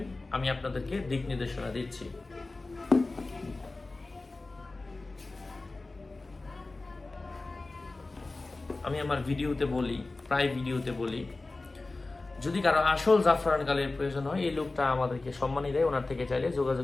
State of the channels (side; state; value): right; quieter; 3.3 dB